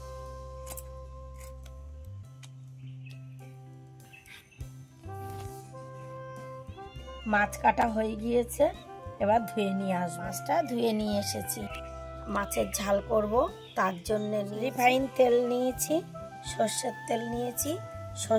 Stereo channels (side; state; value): both; identical; correlation 1.00